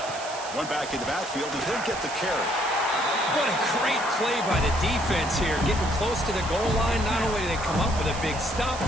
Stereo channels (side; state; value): right; noise; hiss, 12 dB below the sound